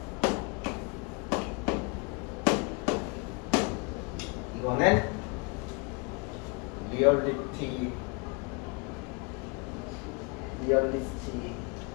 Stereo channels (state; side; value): quieter; right; 31.3 dB